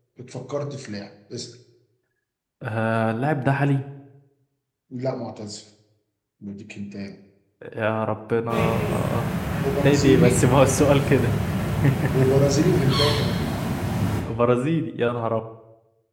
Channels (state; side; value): identical; both; correlation 1.00